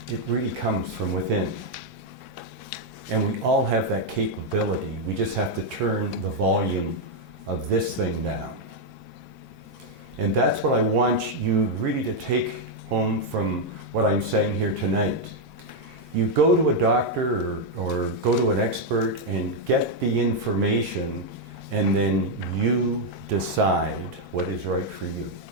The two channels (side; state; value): both; normal; correlation 0.00